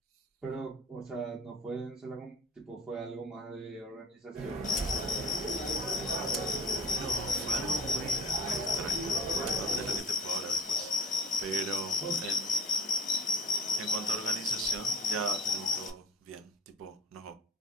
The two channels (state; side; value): normal; both; correlation 0.42